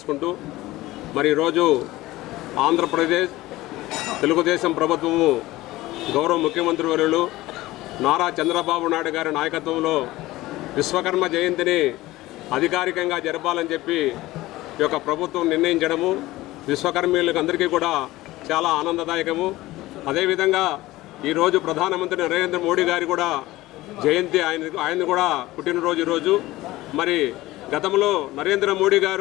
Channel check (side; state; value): right; quieter; 17.9 dB